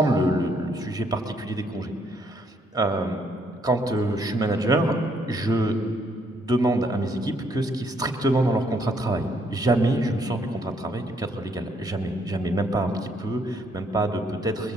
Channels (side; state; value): both; normal; correlation 0.70